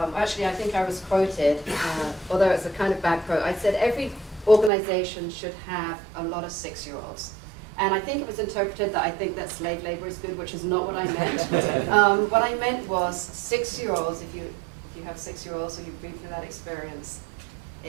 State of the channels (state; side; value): drops out; left; at 4.7 s